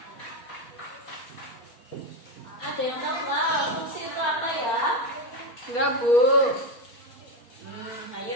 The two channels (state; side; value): late; right; 4.3 ms